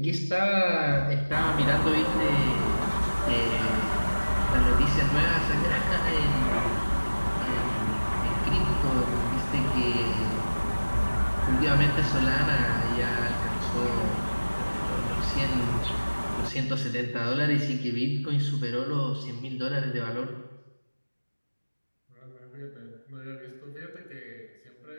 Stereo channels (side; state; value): both; inverted; correlation -1.00